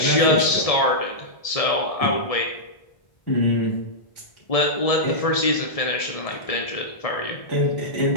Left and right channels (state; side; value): late; right; 1.7 ms